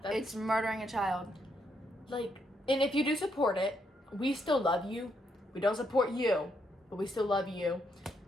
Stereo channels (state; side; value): normal; both; correlation 0.77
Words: It's murdering a child. Like, and if you do support it, we still love you. We don't support you, but we still love you.